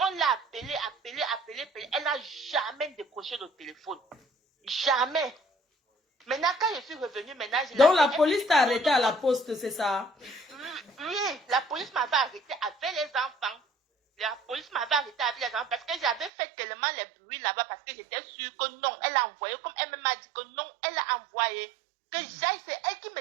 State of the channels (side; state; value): left; drops out; at 16.3 s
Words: l'a appelé. Elle n'a jamais décroché le téléphone. Jamais. Maintenant, quand je suis revenue, Donc la police t'a arrêté à la poste, c'est ça? Oui, la police m'avait arrêté avec les enfants. La police m'avait arrêté avec les enfants parce que j'avais fait tellement les bruits là-bas parce que j'étais sûre que non, elle a envoyé. Comme elle m'a dit que non, elle a envoyé. Que j'aille, c'est elle qui